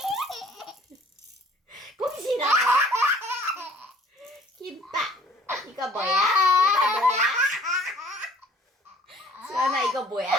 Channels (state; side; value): normal; both; correlation 0.55